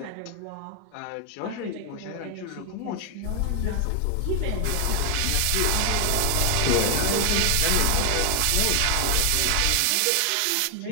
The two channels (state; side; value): different; both; correlation 0.00